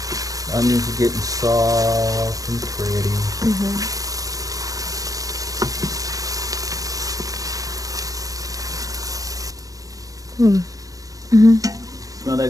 Onions are getting soft and pretty. Mm-hmm. Mm-hmm. Smell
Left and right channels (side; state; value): left; late; 0.17 ms